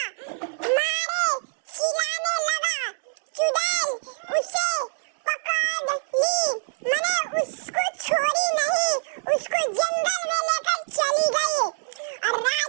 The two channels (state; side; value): silent; left; digital silence